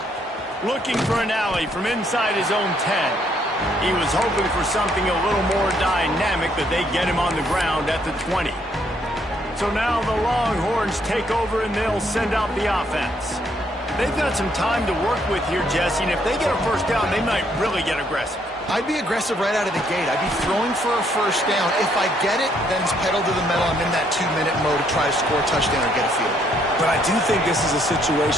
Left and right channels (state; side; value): normal; both; correlation 0.70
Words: Looking for an alley from inside his own 10. He was hoping for something a little more dynamic, but they get him on the ground at the 20. So now the Longhorns take over, and they'll send out the offense. They've got some time to work with here, Jesse, and if they get a first down, they might really get aggressive. I'd be aggressive right out of the gate. I'd be throwing for a first down. If I get it, then it's pedal to the metal. I'm in that 2-minute mode to try to score a touchdown or get a field. But I do think this is a